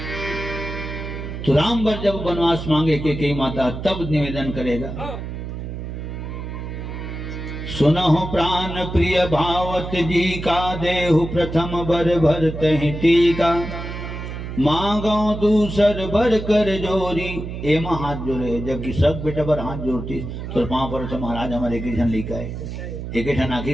तो राम बर जब वनवास मांगे के कई माता तब निवेदन करेगा सुनो प्राण प्रिय भावत जी का देहु प्रथम बर भरत टीका मांगो दूसर बर कर जोरी एमा हाथ जोड़े जबकि सब बेटा बर हाथ जोड़ती तो 5 वर्ष महाराज हमारे एक ठन लेकर आए एक ठन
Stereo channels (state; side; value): noise; right; hum, 7 dB below the sound